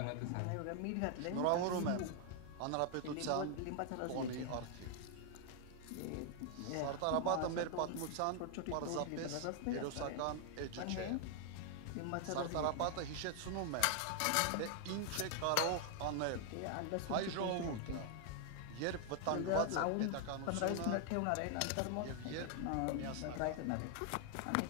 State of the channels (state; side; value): different; both; correlation 0.00